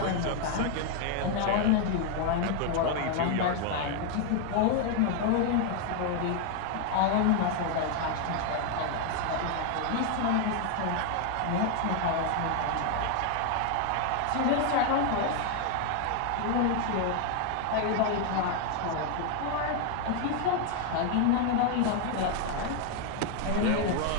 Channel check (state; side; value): different; both; correlation 0.00